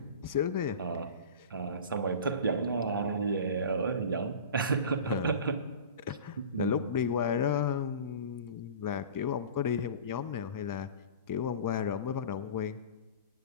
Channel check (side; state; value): both; inverted; correlation -0.37